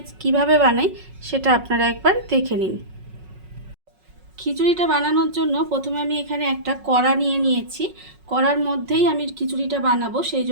কিভাবে বানাই সেটা আপনারা একবার দেখে নিন। খিচুড়িটা বানানোর জন্য প্রথমে আমি এখানে একটা কড়া নিয়ে নিয়েছি। কড়ার মধ্যেই আমি খিচুড়িটা বানাবো, সেই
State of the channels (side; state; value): left; late; 5.4 ms